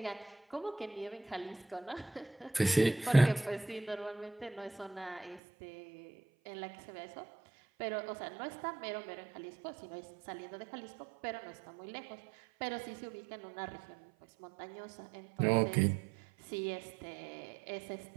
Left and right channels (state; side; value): drops out; left; at 5.4 s